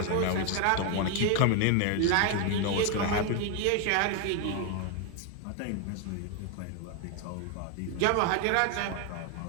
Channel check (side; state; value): both; different; correlation 0.01